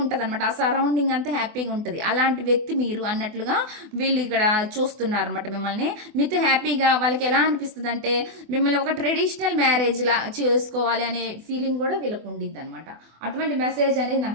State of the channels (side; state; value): left; late; 24 ms